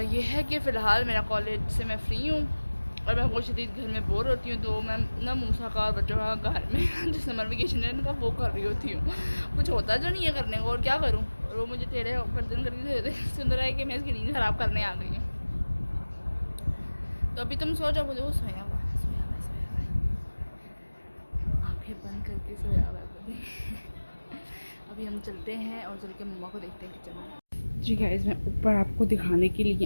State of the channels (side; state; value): both; inverted; correlation -1.00